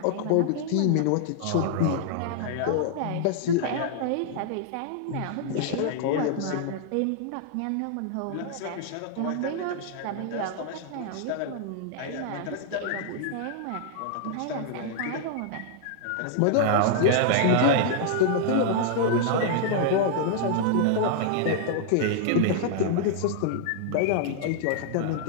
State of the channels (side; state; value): both; different; correlation -0.01